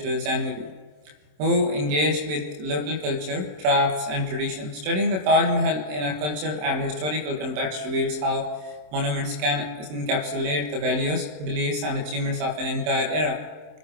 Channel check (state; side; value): late; left; 27 ms